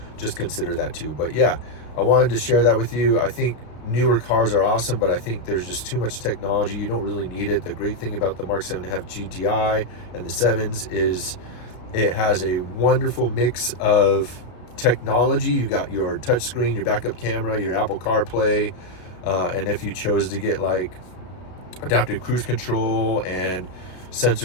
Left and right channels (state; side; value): late; right; 33 ms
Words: just consider that too. But yeah, I wanted to share that with you. I think newer cars are awesome, but I think there's just too much technology. You don't really need it. The great thing about the Mark 7.5 GTI and the 7s is it has a wonderful mix of technology. You got your touchscreen, your backup camera, your Apple CarPlay, and if you chose to get like adaptive cruise control and